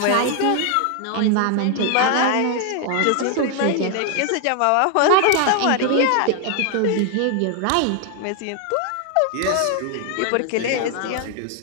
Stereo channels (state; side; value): different; both; correlation 0.00